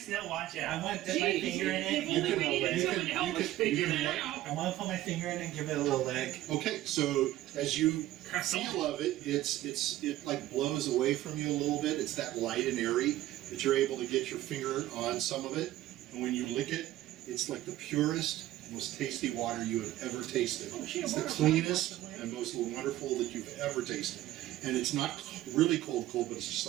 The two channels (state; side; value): quieter; left; 15.0 dB